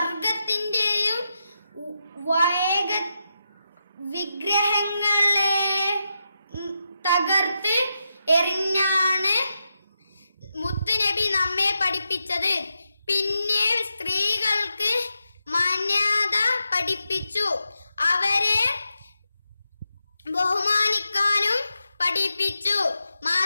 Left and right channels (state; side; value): inverted; both; correlation -0.87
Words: വിഗ്രഹങ്ങളെ തകർത്ത് എറിഞ്ഞാണ് മുത്തുനബി നമ്മെ പഠിപ്പിച്ചത്. പിന്നെ സ്ത്രീകൾക്ക് മാന്യത പഠിപ്പിച്ചു. അവരെ ബഹുമാനിക്കാനും പഠിപ്പിച്ചു.